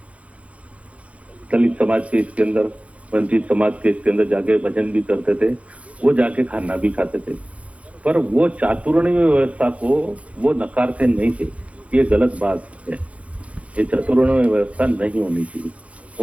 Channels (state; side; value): late; left; 0.064 ms